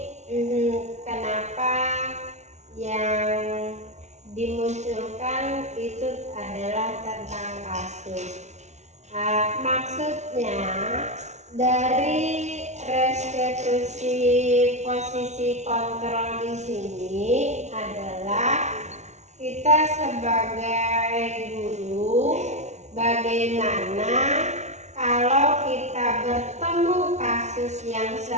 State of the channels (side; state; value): left; late; 0.33 ms